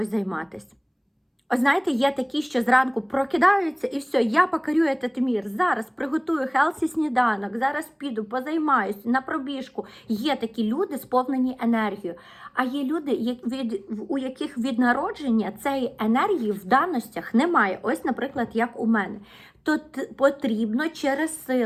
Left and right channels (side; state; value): both; identical; correlation 1.00